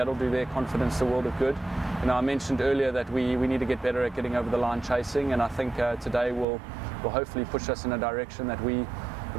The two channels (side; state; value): left; drops out; at 6.5 s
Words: do their confidence the world of good. You know, I mentioned earlier that we need to get better at getting over the line chasing, and I think today will hopefully push us in a direction that we